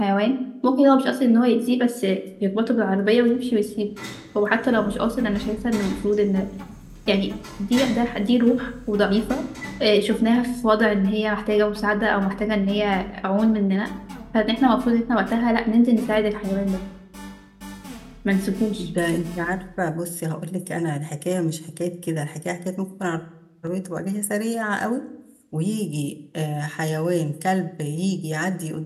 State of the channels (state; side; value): identical; both; correlation 1.00